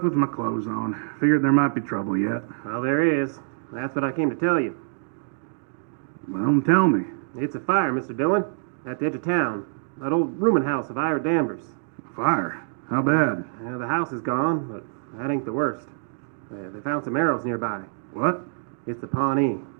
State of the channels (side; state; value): left; silent; digital silence